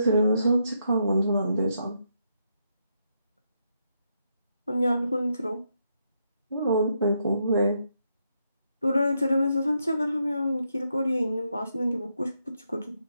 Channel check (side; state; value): both; inverted; correlation -0.79